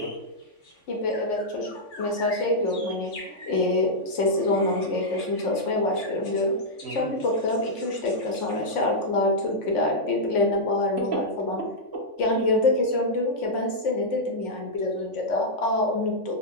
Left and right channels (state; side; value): late; right; 3.5 ms